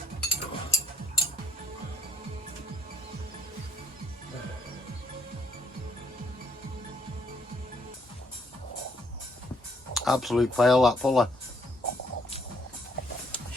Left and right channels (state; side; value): normal; both; correlation 0.68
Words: Absolute fail, that puller.